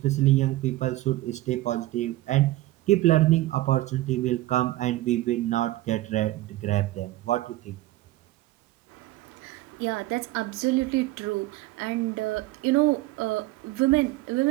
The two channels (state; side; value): quieter; left; 17.2 dB